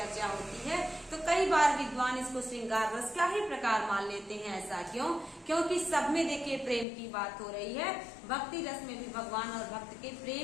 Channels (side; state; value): right; drops out; at 6.9 s